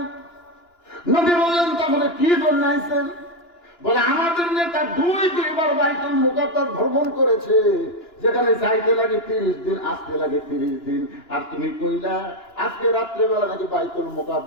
নবী বললেন তাহলে কি জন্য আইছেন? বলে আমাদের নেতা দুইবার বাইতুল মুকাদ্দাস ভ্রমণ করেছে, যেখানে যাইতে লাগে 30 দিন, আসতে লাগে 30 দিন। আর তুমি কইলা আজকে রাত্রেবেলা নাকি বাইতুল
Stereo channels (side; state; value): right; late; 2.9 ms